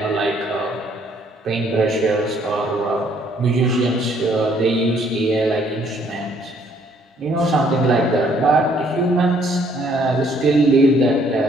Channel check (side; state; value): both; normal; correlation 0.64